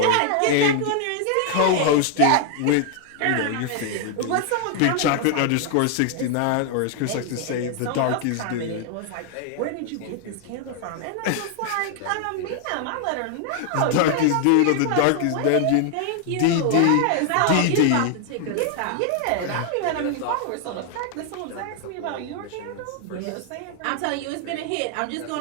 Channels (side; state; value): both; different; correlation 0.00